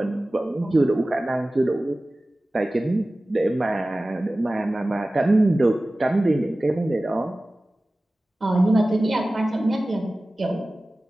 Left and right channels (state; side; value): normal; both; correlation 0.97